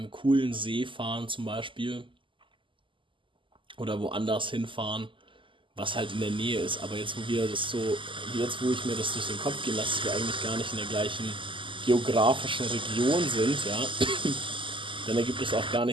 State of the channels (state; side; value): late; left; 0.25 ms